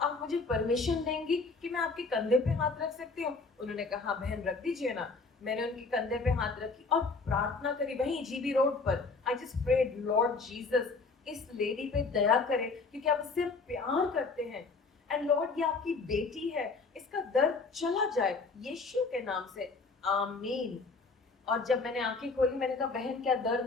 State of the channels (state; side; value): quieter; right; 4.2 dB